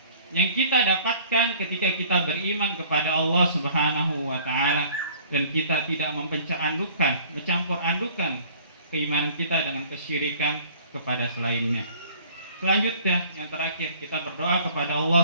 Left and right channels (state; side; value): inverted; both; correlation -0.51